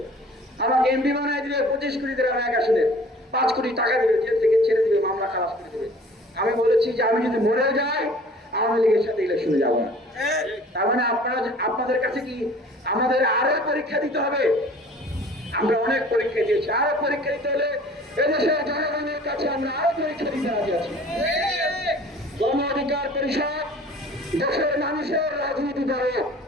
আমাকে এমপি বানায় দিবে, 25 কোটি করে এক আসনে 5 কোটি টাকা দিবে, জেল থেকে ছেড়ে দিবে, মামলা খালাস করে দিবে। আমি বলেছি যে আমি যদি মরে যাই আওয়ামী লীগের সাথে ইলেকশনে যাবো না। তার মানে আপনাদের কাছে কি আমাদের আরো পরীক্ষা দিতে হবে? আমরা অনেক পরীক্ষা দিয়েছি, আরো পরীক্ষা দিতে হলে এদেশের জনগণের কাছে আমরা আরো পরীক্ষা দিতে রাজি আছি। গণ অধিকার পরিষদ দেশের মানুষের রাজনীতি করে।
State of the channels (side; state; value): both; normal; correlation 0.48